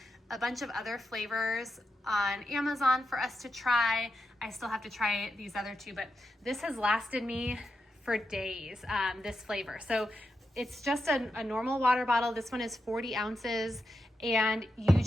a bunch of other flavors on Amazon for us to try. I still have to try these other two, but this has lasted me for days, this flavor. So it's just a normal water bottle. This one is 40 ounces, and you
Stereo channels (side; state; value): both; normal; correlation 0.87